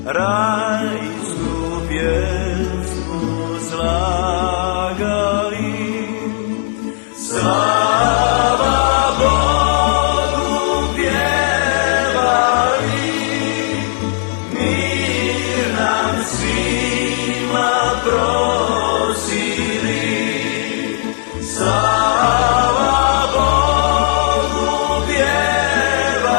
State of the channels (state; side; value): silent; right; digital silence